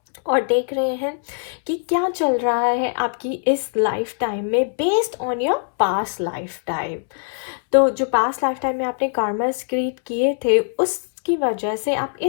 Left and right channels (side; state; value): right; silent; 64 dB below the other